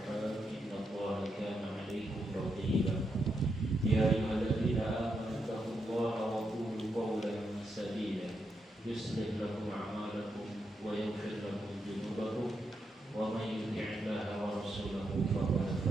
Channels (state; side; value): normal; both; correlation 0.83